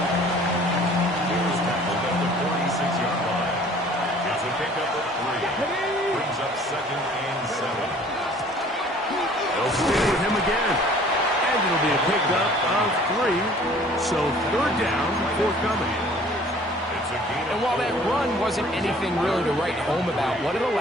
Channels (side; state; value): both; normal; correlation 0.52